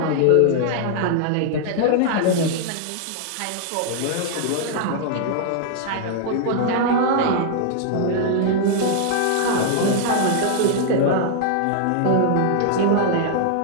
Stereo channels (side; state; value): both; different; correlation -0.01